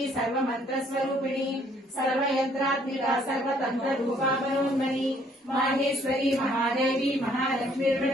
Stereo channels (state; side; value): normal; both; correlation 0.63